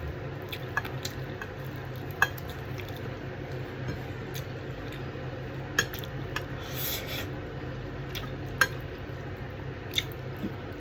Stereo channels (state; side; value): identical; both; correlation 1.00